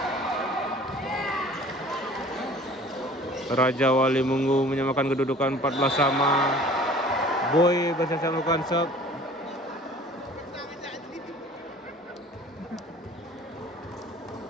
Raja Wali Munggu menyamakan kedudukan 14 sama. Boy bersiap-siap melakukan sub.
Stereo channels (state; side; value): normal; both; correlation 0.48